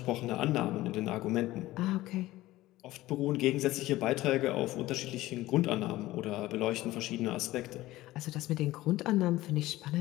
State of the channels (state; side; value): quieter; right; 17.0 dB